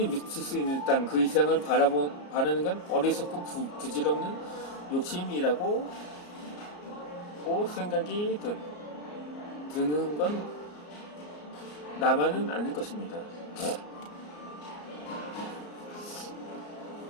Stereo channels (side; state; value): right; late; 34 ms